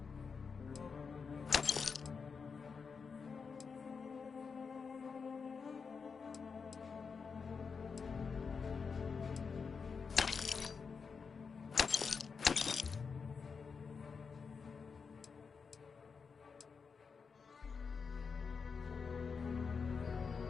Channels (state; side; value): quieter; right; 5.5 dB